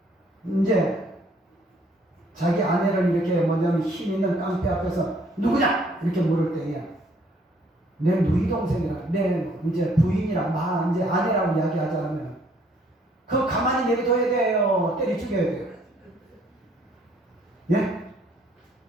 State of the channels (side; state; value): both; normal; correlation 0.63